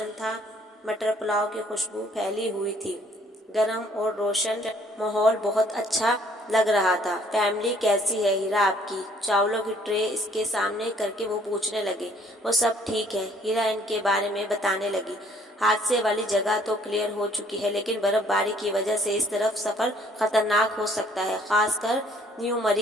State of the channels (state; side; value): normal; both; correlation 0.61